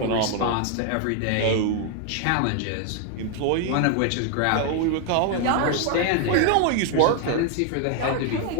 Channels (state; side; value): different; both; correlation 0.00